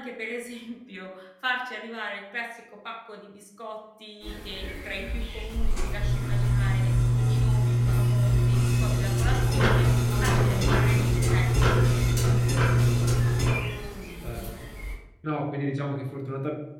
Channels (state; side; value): identical; both; correlation 1.00